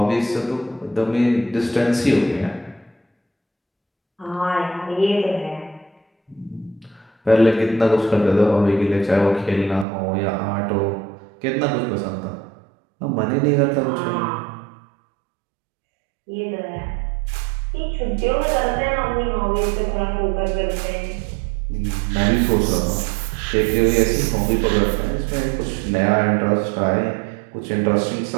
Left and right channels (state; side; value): drops out; left; at 9.9 s